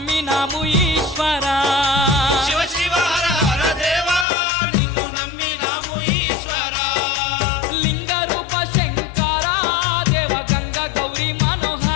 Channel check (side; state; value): right; drops out; at 4.2 s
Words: ఈశ్వరా శివ శివ హర హర దేవా నిన్ను నమ్మినాము ఈశ్వరా లింగ రూప శంకర దేవ గంగ గౌరీ